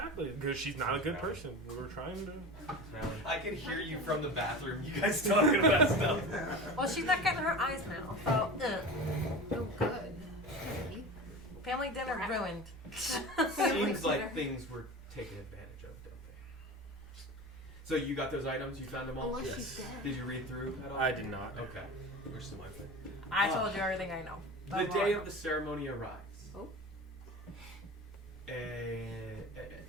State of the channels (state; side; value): normal; both; correlation 0.31